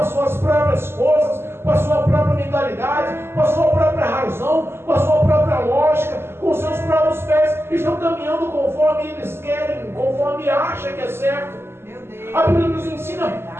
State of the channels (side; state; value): left; late; 0.12 ms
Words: suas próprias forças, com a sua própria mentalidade, com a sua própria razão, com a sua própria lógica, com os seus próprios pés. Estão caminhando conforme eles querem, conforme acham que é certo. A Bíblia nos ensina